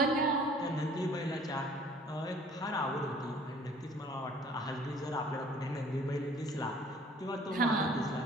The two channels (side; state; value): both; normal; correlation 0.53